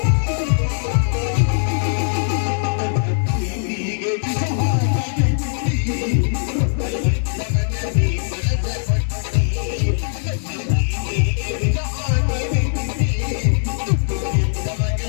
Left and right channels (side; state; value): right; silent; digital silence